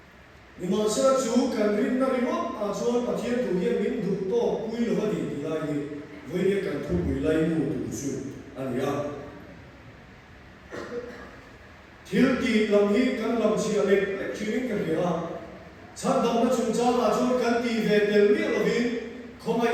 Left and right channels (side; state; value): both; identical; correlation 1.00